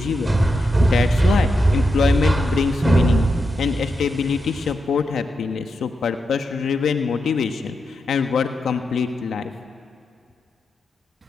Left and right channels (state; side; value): normal; both; correlation 0.86